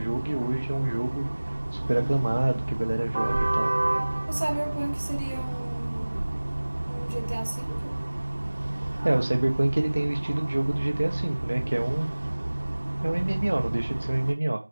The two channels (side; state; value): both; inverted; correlation -1.00